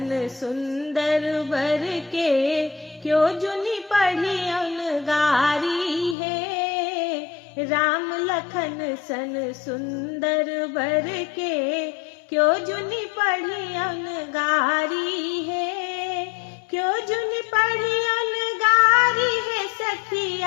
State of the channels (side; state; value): right; drops out; at 6.2 s